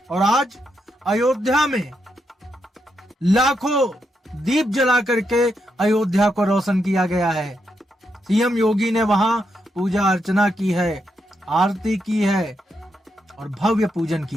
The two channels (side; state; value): both; normal; correlation 0.82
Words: और आज अयोध्या में लाखों दीप जला करके अयोध्या को रोशन किया गया है। सीएम योगी ने वहां पूजा अर्चना की है, आरती की है और भव्य पूजन